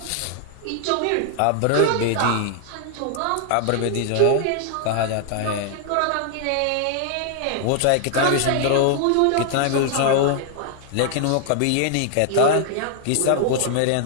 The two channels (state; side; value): different; both; correlation 0.00